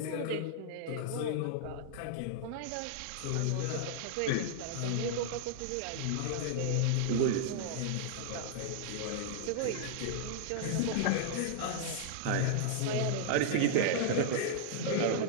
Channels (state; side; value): different; both; correlation -0.01